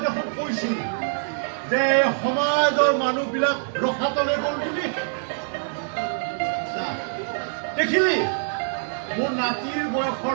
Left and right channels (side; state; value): left; silent; digital silence